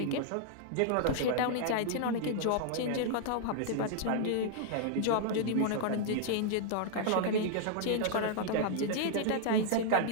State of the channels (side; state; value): both; different; correlation -0.01